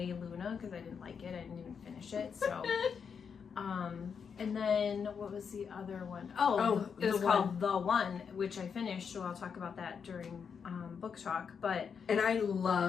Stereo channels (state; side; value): quieter; right; 6.5 dB